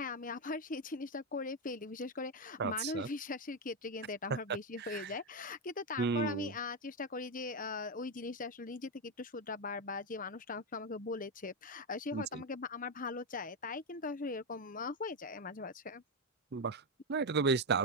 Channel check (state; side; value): normal; both; correlation 0.06